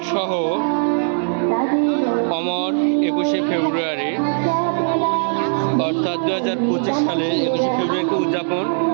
সহ অমর 21শে ফেব্রুয়ারি অর্থাৎ 2025 সালে 21শে ফেব্রুয়ারিকে উদযাপন,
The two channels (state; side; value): silent; left; digital silence